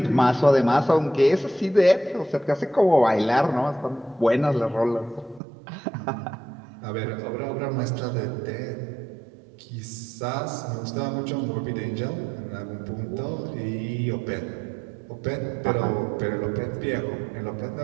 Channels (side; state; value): left; drops out; at 5.4 s